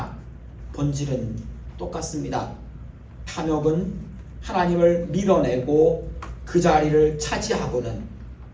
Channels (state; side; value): identical; both; correlation 1.00